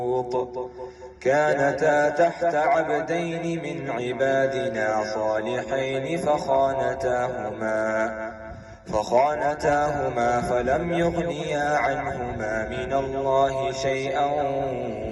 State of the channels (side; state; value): both; identical; correlation 1.00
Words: كانتا تحت عبدين من عبادنا صالحين فخانتاهما فلم يغنيا عنهما من الله شيئا